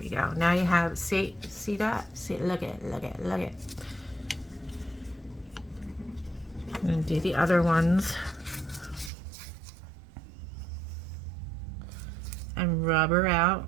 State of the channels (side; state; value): left; drops out; at 9.1 s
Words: we go. Now you have, see that? See, look at it. I'm gonna do the other ones. And rub her